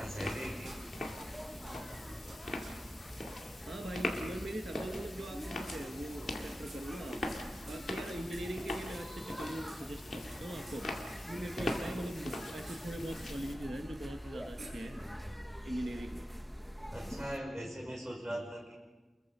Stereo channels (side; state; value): both; normal; correlation 0.92